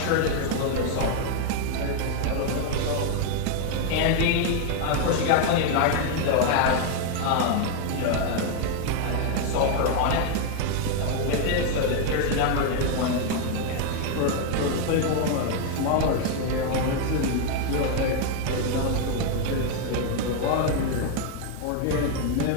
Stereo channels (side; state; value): both; different; correlation 0.00